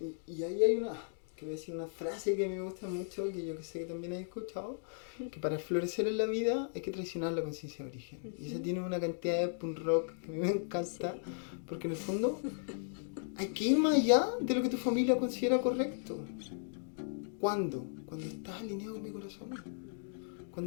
Y ahí hay que voy a decir una frase que a mí me gusta mucho, que yo que sé que también has escuchado, que para florecer en la vida hay que traicionar la conciencia de origen. Y eso tiene una cantidad de punk rock que a mí me encanta, porque en el fondo hay que ir más allá de lo que tu familia considera correcto. ¿Cuándo? Cuando estás alineado con mi corazón.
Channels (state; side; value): silent; right; digital silence